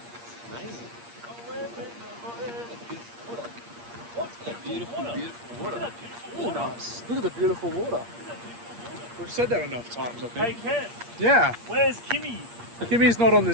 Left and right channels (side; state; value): left; late; 8.5 ms